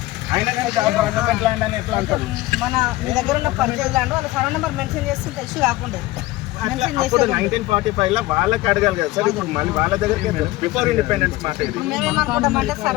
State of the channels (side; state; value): right; quieter; 18.1 dB